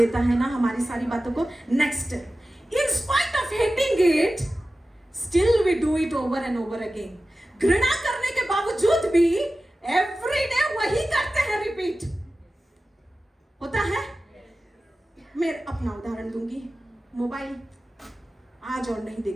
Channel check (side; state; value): both; normal; correlation 0.95